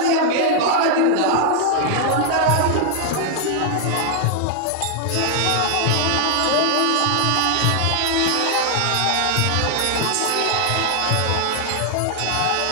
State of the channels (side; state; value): both; different; correlation 0.00